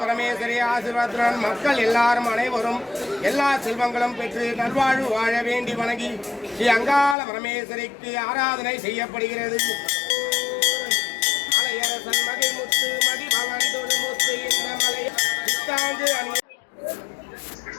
பரமேஸ்வரி ஆசீர்வாதத்துடன் மக்கள் எல்லாரும் அனைவரும் எல்லா செல்வங்களும் பெற்று நல்வாழ்வு வாழ வேண்டி வணங்கி ஸ்ரீ அங்காள பரமேஸ்வரிக்கு ஆராதனை செய்யப்படுகிறது. மலையரசன் மகிழ்முத்து மதிபவன் தொழுமுத்து இந்த மலை புத்தாண்டு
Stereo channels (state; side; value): drops out; right; at 7.2 s